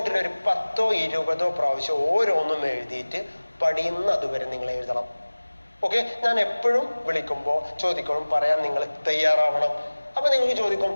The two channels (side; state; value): both; inverted; correlation -1.00